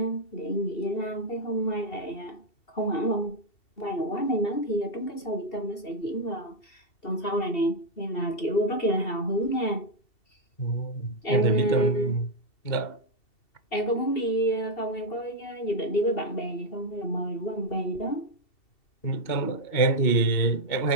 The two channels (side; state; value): right; late; 2.7 ms